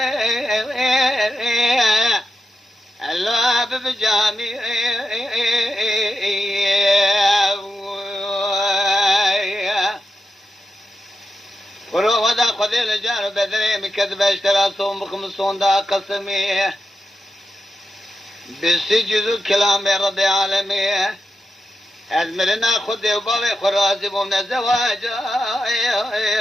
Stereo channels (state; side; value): normal; both; correlation 0.88